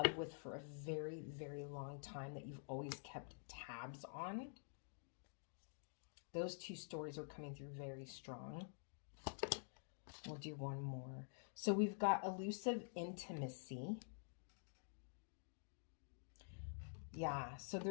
with for a very, very long time that you've always kept tabs on. Those 2 stories are coming through very strong. We'll do one more. So we've got elusive intimacy. Yeah, so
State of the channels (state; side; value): silent; right; digital silence